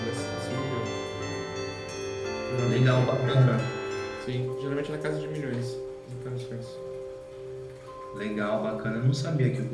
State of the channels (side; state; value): both; identical; correlation 1.00